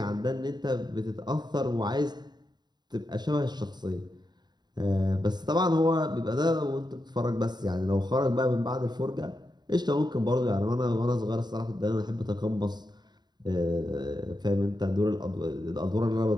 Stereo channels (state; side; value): late; left; 0.20 ms